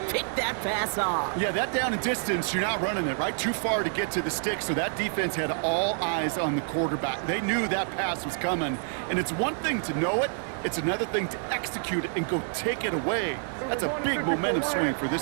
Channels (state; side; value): silent; left; 59 dB below the other